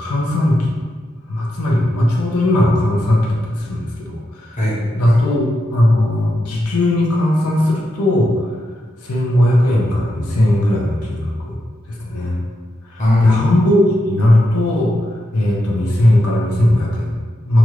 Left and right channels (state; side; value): normal; both; correlation 0.86